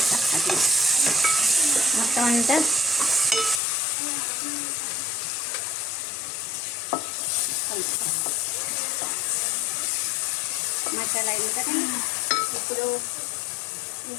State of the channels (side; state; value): right; drops out; at 3.6 s